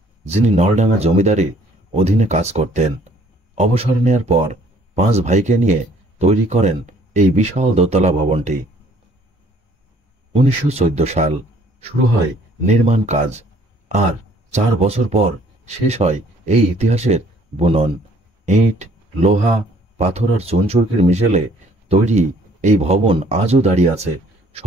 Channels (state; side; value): normal; both; correlation 0.60